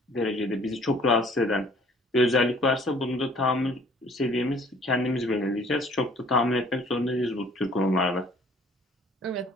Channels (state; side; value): normal; both; correlation 0.55